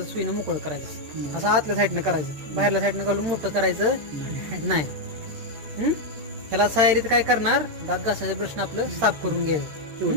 सुईनं मोकळं करायचं. असं आतल्या साईडनं करायचं, बाहेरल्या साईडनं घालून मोठं करायचं नाही. ह्याला सायरीत काय करणार, दात घासायचं ब्रशनं आपलं साफ करून घ्यायचं.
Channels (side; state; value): left; late; 13 ms